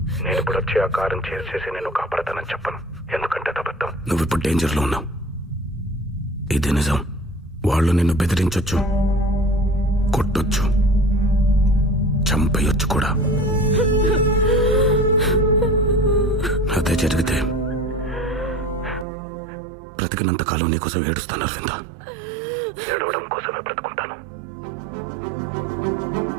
నేను ఇప్పుడు వచ్చి ఆ కారం చేసేసి నేను కాపాడతానని చెప్పను, ఎందుకంటే అబద్ధం. నువ్వు ఇప్పుడు డేంజర్లో ఉన్నావు, ఇది నిజం. వాళ్ళు నిన్ను బెదిరించొచ్చు, కొట్టొచ్చు, చంపేయొచ్చు కూడా. అదే జరిగితే బ్రతికినంత కాలం నీకోసం ఏడుస్తాను అరవింద. ఏడవడం కోసమే బ్రతుకుంటాను.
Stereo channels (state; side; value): drops out; left; at 19.1 s